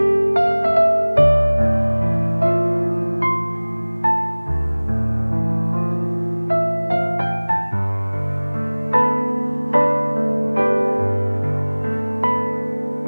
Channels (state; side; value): inverted; both; correlation -1.00